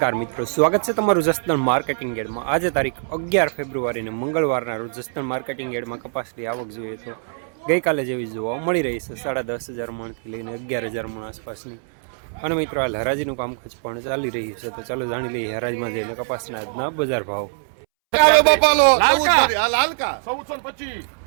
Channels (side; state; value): left; silent; 64 dB below the other